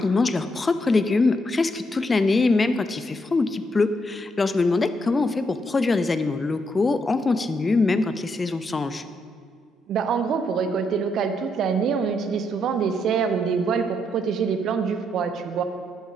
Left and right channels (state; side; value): normal; both; correlation 0.77